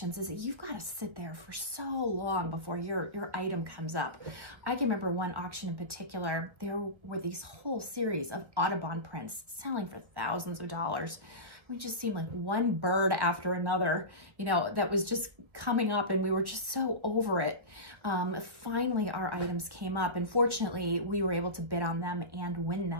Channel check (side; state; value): left; late; 1.4 ms